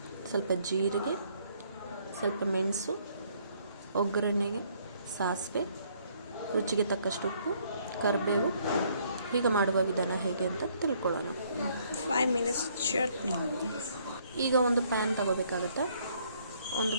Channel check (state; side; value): inverted; both; correlation -0.66